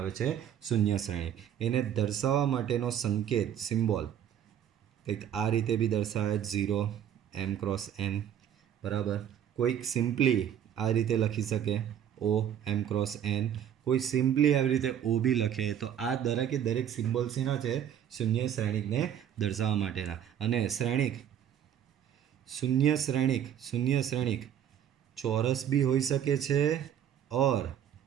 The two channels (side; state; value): left; quieter; 9.7 dB